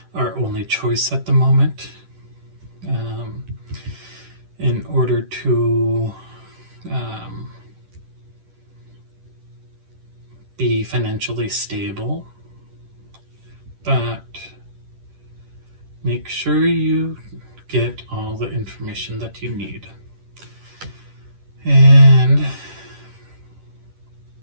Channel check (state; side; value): late; left; 10 ms